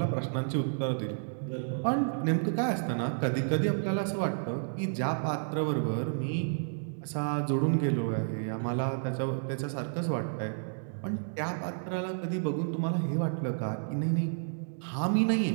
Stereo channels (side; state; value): left; silent; digital silence